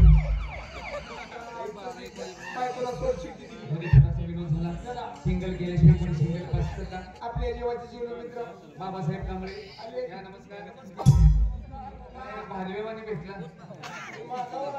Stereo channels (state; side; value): identical; both; correlation 1.00